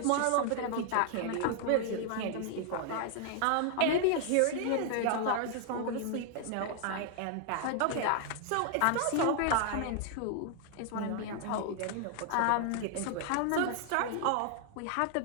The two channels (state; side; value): different; both; correlation 0.00